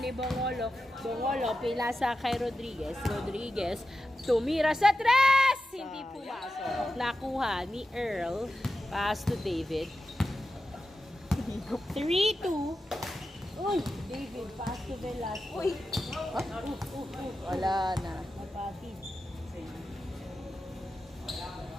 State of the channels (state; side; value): normal; both; correlation 0.91